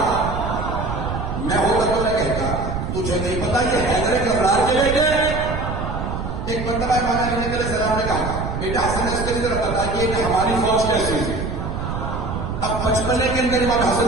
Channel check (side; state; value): right; noise; rumble, 4 dB below the sound